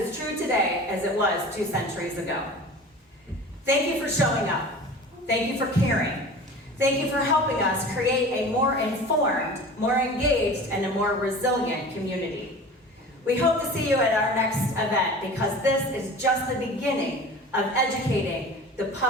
as true today as it was 2 centuries ago. Thank you for showing up. Thank you for caring. Thank you for helping us create a more informed, more engaged, and a more resilient community. We hope to see you at our next event because this is just the beginning of educating the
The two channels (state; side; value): normal; both; correlation 0.38